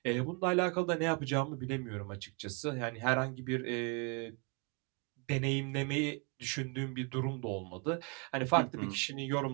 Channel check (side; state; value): left; quieter; 34.3 dB